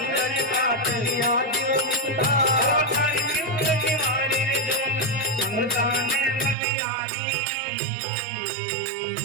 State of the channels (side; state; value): left; drops out; at 6.6 s